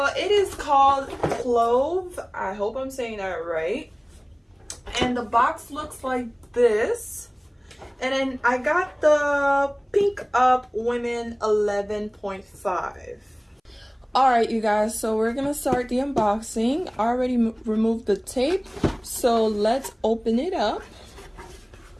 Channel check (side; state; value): both; identical; correlation 1.00